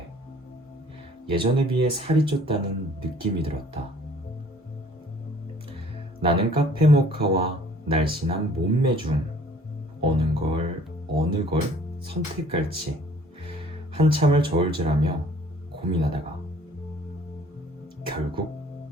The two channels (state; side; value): normal; both; correlation 0.54